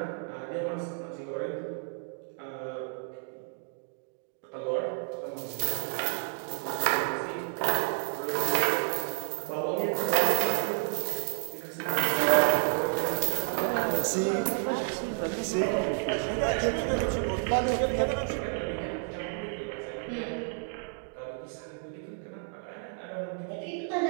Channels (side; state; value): left; silent; 57 dB below the other